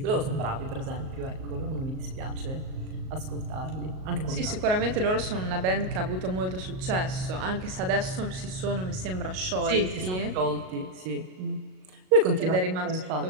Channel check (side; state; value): left; late; 38 ms